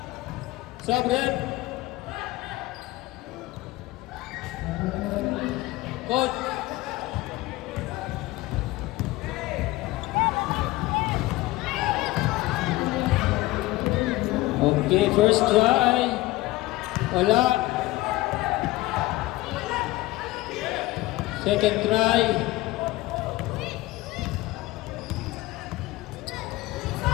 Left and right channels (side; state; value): right; quieter; 18.8 dB